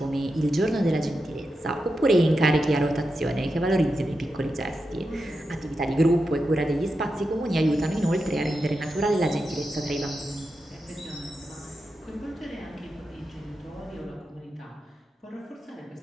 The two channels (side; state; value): both; normal; correlation 0.88